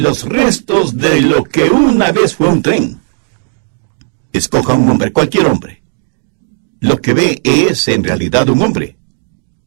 restos de lo que una vez fue un tren. Escoja un hombre, cualquier hombre. Lo que ve es en realidad un hombre.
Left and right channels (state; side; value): silent; left; digital silence